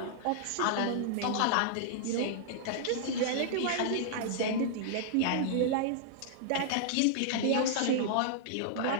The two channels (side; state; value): both; different; correlation -0.01